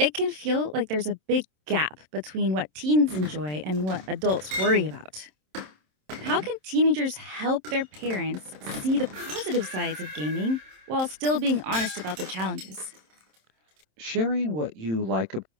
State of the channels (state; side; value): late; left; 27 ms